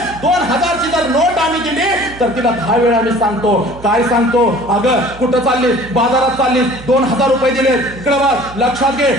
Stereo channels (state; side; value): noise; right; hum, 17 dB below the sound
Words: 2000ची जर नोट आम्ही दिली तर तिला 10 वेळा आम्ही सांगतो. काय सांगतो? अगं कुठं चाललीस? बाजारात चाललीस, 2000 रुपये दिले, इकडे बघ, लक्षात घे,